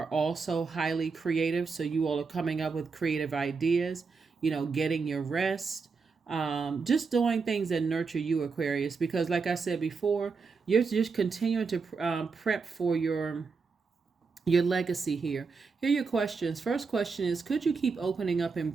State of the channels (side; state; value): left; quieter; 4.9 dB